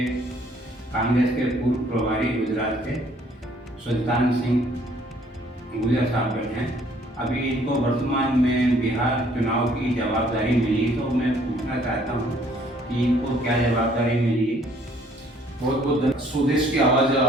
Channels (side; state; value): both; normal; correlation 0.61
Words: कांग्रेस के पूर्व प्रभारी गुजरात के सुल्तान सिंह गुजर साहब बैठे हैं। अभी इनको वर्तमान में बिहार चुनाव की जवाबदारी मिली, तो मैं पूछना चाहता हूँ कि इनको क्या जवाबदारी मिली। बहुत बहुत स्वदेश की आवाज़ है